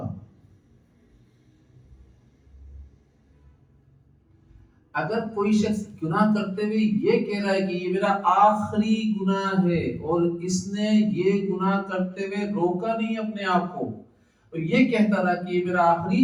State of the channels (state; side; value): identical; both; correlation 1.00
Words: اگر کوئی شخص گناہ کرتے ہوئے یہ کہہ رہا ہے کہ یہ میرا آخری گناہ ہے، اور اس نے یہ گناہ کرتے ہوئے روکا نہیں اپنے آپ کو، اور یہ کہتا رہا کہ یہ میرا آخری